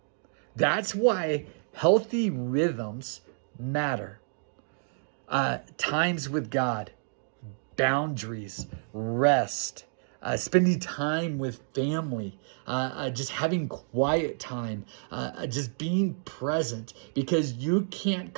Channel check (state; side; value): silent; left; digital silence